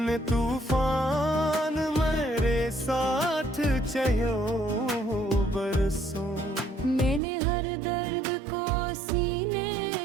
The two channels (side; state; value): left; drops out; at 7.2 s